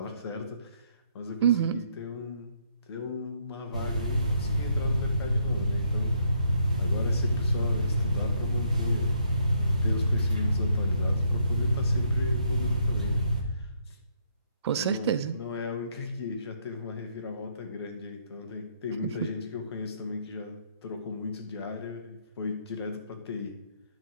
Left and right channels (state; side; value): inverted; both; correlation -0.72